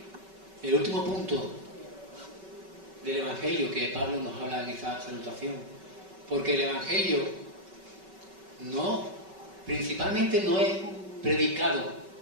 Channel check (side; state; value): left; late; 5.3 ms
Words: el último punto del Evangelio que Pablo nos habla en esa salutación, porque el Evangelio principalmente no es predicado